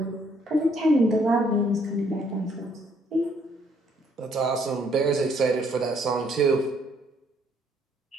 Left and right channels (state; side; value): normal; both; correlation 0.67